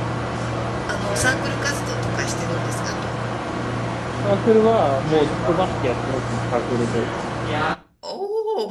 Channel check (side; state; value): both; identical; correlation 1.00